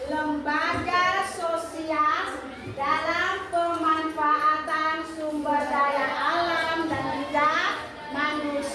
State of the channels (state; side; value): identical; both; correlation 1.00